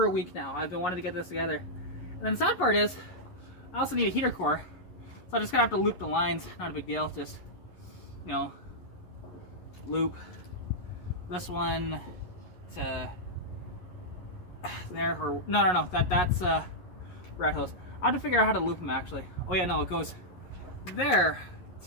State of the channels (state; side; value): late; right; 11 ms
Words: a week now. I've been wanting to get this together. And then the sad part is, I also need a heater core. So I'm just gonna have to loop the lines, not a big deal, just, you know, loop this one to there, or, no, that's rat hose. I have to figure out how to loop them actually. Oh yeah, no, it goes there